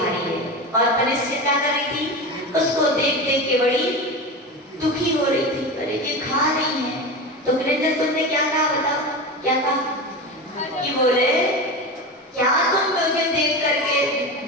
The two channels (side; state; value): both; normal; correlation 0.25